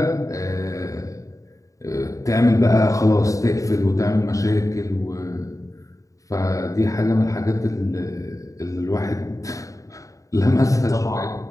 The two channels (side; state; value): right; late; 0.16 ms